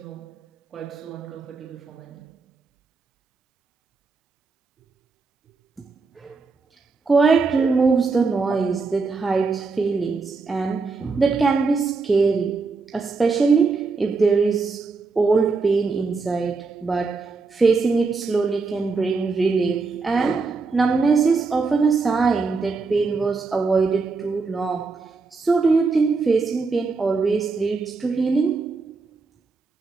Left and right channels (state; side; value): quieter; left; 4.3 dB